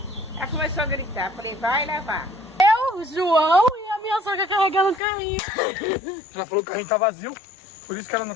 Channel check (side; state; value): right; drops out; at 5.0 s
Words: ela começou a gritar. Falei, vai levar. Eu, João e a minha sogra carregando o carrinho. Ela falou que o carrinho tá vazio, por isso que ela não